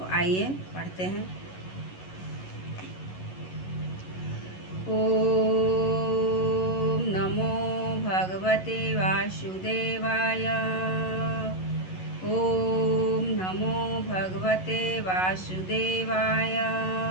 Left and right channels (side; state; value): right; late; 11 ms